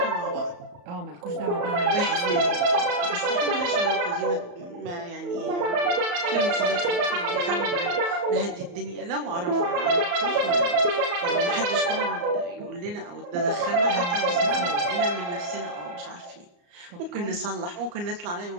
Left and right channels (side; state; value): left; late; 34 ms